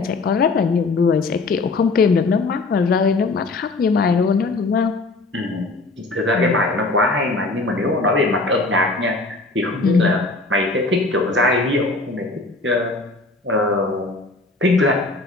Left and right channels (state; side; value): quieter; right; 3.3 dB